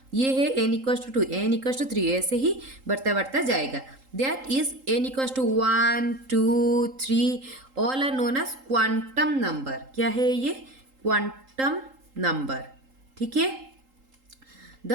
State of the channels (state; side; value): late; left; 3.8 ms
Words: ये है n equals to 2, n equals to 3, ऐसे ही बढ़ता जाएगा। That is n equals to 1, 2, 3 all are known as quantum number. क्या है ये? Quantum number. ठीक है, the